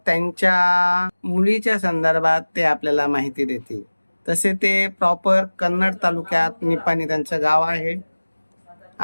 त्यांच्या मुलीच्या संदर्भात ते आपल्याला माहिती देतील. तसे ते प्रॉपर कन्नड तालुक्यात निपाणी त्यांचं गाव आहे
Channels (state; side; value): inverted; both; correlation -1.00